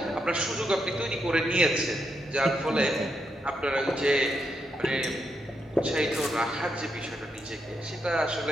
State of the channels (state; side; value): normal; both; correlation 0.82